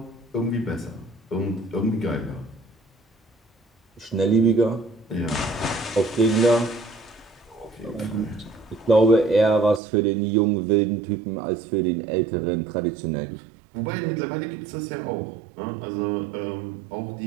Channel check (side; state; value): left; drops out; at 9.8 s